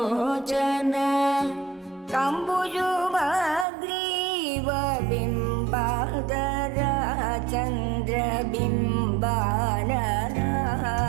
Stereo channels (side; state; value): left; drops out; at 3.7 s